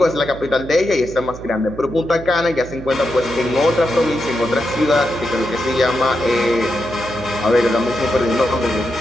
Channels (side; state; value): right; noise; hum, 13 dB below the sound